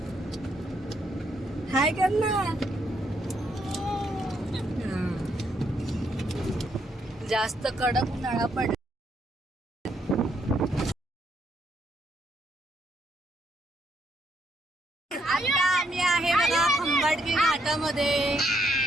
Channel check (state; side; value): normal; both; correlation 0.74